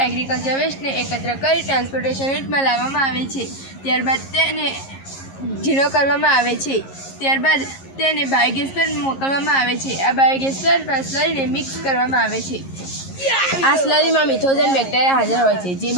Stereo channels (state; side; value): late; right; 11 ms